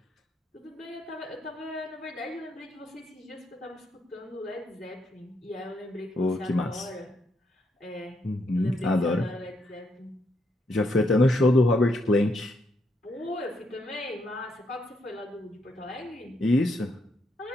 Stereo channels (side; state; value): both; normal; correlation 0.77